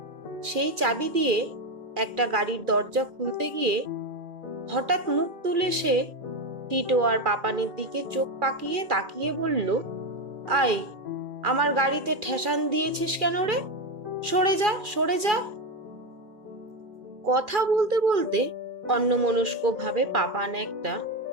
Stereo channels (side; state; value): left; late; 2.4 ms